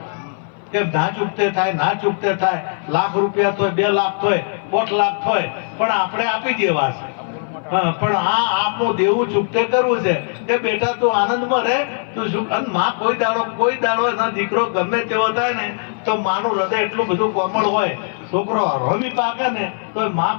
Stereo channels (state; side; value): silent; right; 59 dB below the other